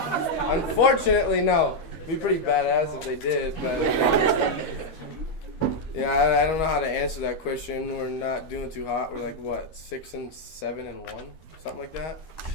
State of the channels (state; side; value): late; right; 13 ms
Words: Unfortunately, no. It'd be pretty badass if they did, but... yeah, I don't know how to answer that question. We're not doing too hot. We're like, what, 6-7-1? Something like that?